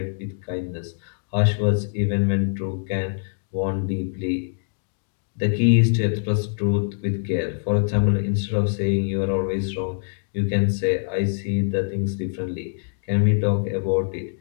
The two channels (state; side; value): silent; right; digital silence